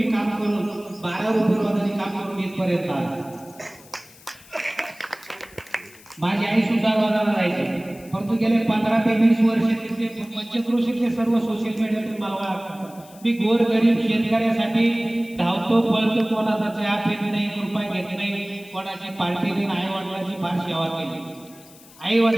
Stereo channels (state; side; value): noise; left; hiss, 23 dB below the sound